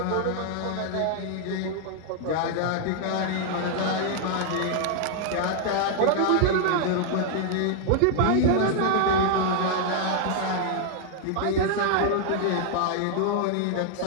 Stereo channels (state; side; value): different; both; correlation 0.00